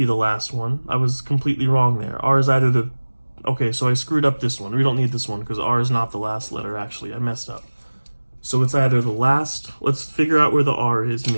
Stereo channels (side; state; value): both; inverted; correlation -1.00